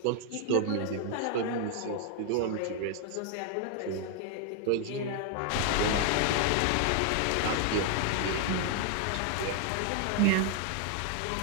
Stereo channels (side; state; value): both; different; correlation 0.00